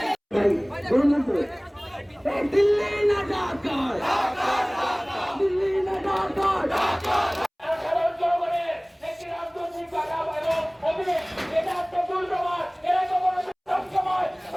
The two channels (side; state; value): both; identical; correlation 1.00